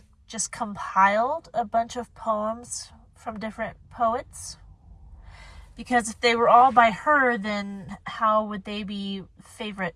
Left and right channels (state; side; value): identical; both; correlation 1.00